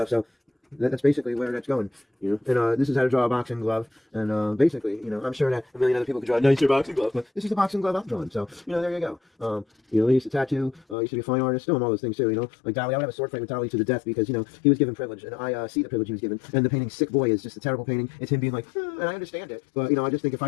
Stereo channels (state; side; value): drops out; right; at 11.0 s